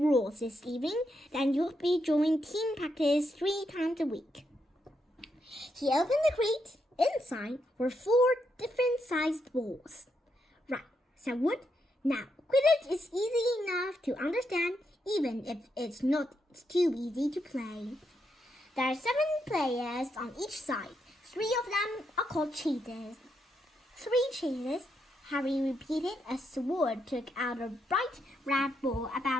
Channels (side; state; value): both; normal; correlation 0.81